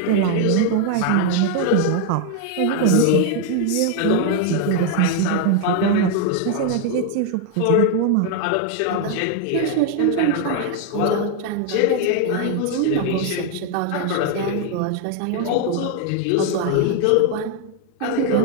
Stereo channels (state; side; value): different; both; correlation 0.01